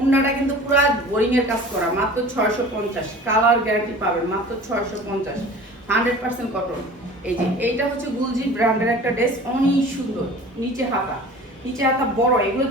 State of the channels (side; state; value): both; normal; correlation 0.42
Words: কিন্তু পুরো বোরিং এর কাজ করা মাত্র 650। কালার গ্যারান্টি পাবেন মাত্র 650, 100% কটন। এই যে এইটা হচ্ছে গুলজি ব্র্যান্ডের একটা ড্রেস, অনেক সুন্দর। নিচে হাতা বড়, এগুলো